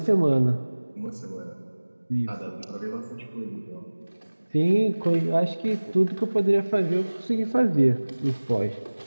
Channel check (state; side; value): inverted; both; correlation -1.00